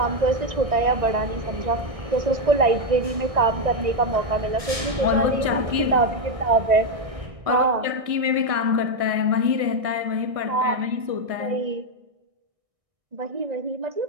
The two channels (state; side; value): late; left; 1.6 ms